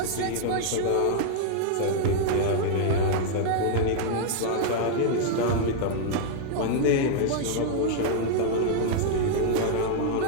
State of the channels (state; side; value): different; both; correlation -0.01